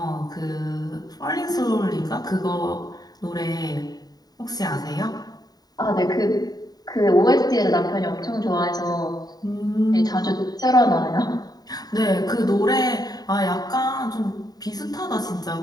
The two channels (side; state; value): right; late; 0.19 ms